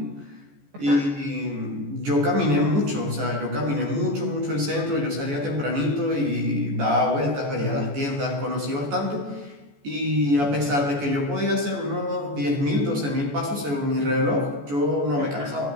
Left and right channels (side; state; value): left; late; 14 ms